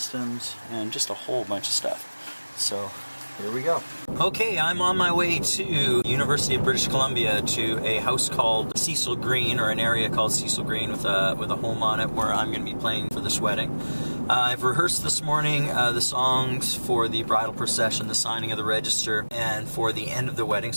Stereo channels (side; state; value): both; inverted; correlation -1.00